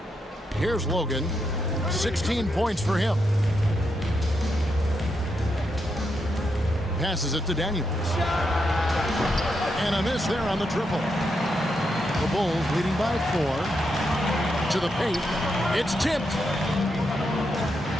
Here's Logan. 16 points for him. Passes it to Daniels. And a miss there on the triple. The Bulls leading by 4. To the paint. It's tipped.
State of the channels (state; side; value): normal; both; correlation 0.82